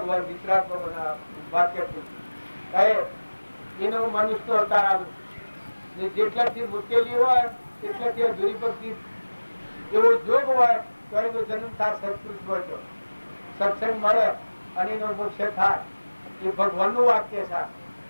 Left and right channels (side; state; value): both; inverted; correlation -1.00